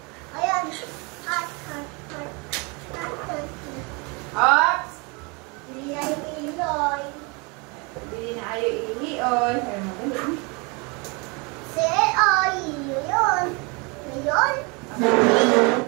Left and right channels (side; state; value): left; quieter; 29.9 dB